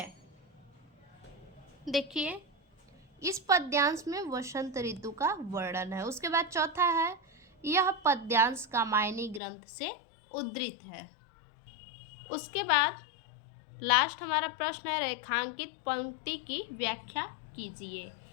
देखिए इस पद्यांश में वसंत ऋतु का वर्णन है। उसके बाद चौथा है, यह पद्यांश कामायनी ग्रंथ से उद्धृत है। उसके बाद लास्ट हमारा प्रश्न है, रेखांकित पंक्ति की व्याख्या कीजिए।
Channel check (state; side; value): drops out; right; at 9.4 s